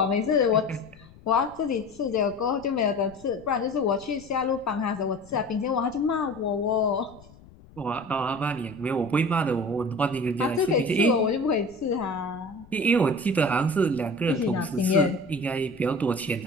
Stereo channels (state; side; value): noise; left; rumble, 23 dB below the sound